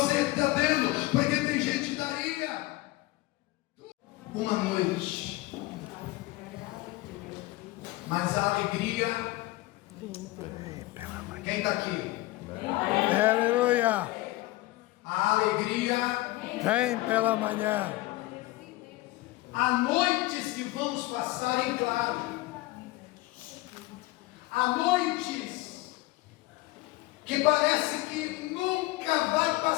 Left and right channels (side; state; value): right; quieter; 19.3 dB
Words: está tendo, porque tem gente que daria uma noite, mas a alegria. Quem está aqui? Aleluia. A alegria Vem pela manhã. há noites que vamos passar em claro, há noites que parece que nunca vai